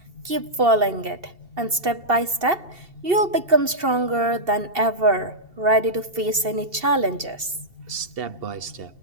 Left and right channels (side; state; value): left; late; 2.7 ms